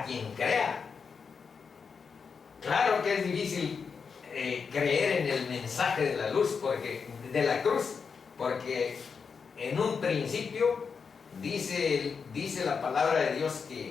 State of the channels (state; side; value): quieter; right; 5.7 dB